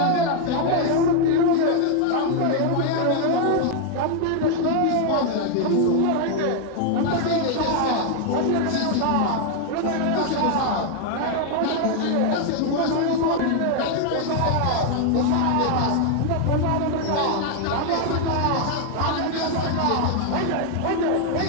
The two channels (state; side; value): different; both; correlation 0.00